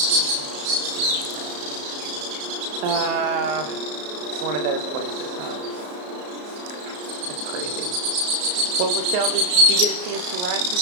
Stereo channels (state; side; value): late; left; 34 ms